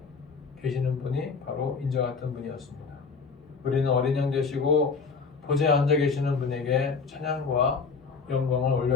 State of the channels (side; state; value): right; quieter; 5.0 dB